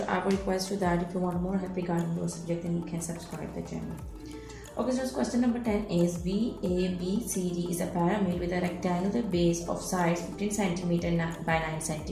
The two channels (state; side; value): identical; both; correlation 1.00